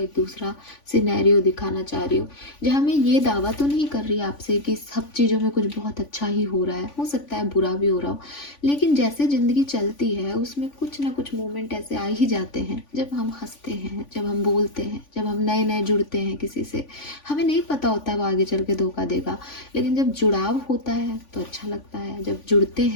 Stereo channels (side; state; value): right; late; 3.5 ms